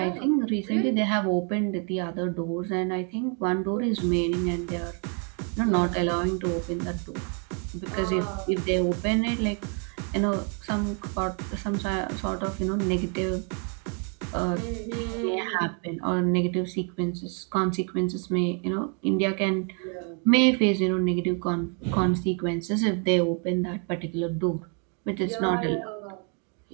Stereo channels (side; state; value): left; quieter; 39.8 dB